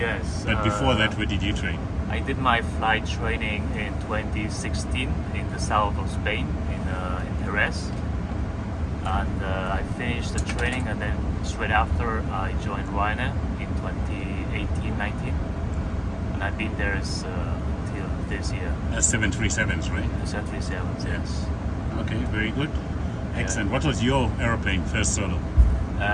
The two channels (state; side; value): identical; both; correlation 1.00